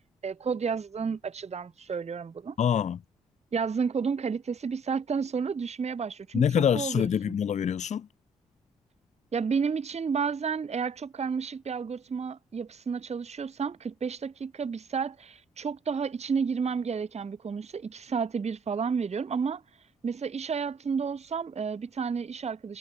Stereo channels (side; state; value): both; normal; correlation 0.58